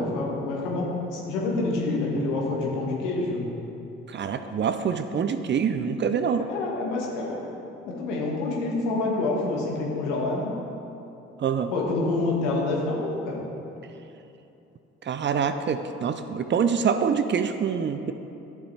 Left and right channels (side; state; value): both; normal; correlation 0.33